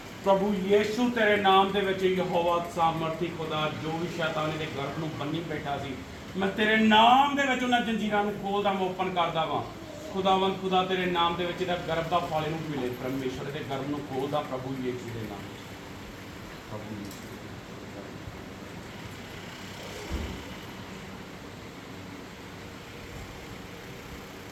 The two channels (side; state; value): both; identical; correlation 1.00